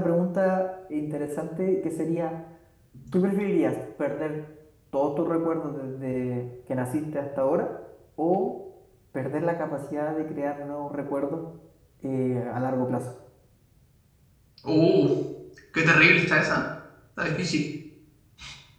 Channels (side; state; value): both; identical; correlation 1.00